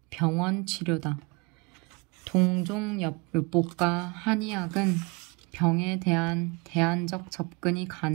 병원 치료다. 동종요법과 한의학은 병에 대한 대안적 접근이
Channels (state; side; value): quieter; left; 28.4 dB